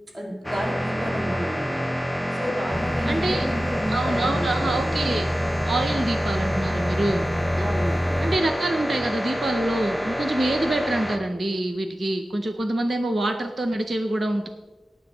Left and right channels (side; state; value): both; normal; correlation 0.94